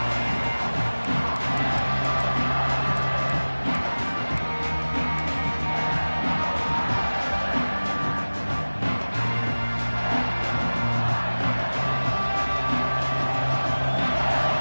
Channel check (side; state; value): both; inverted; correlation -1.00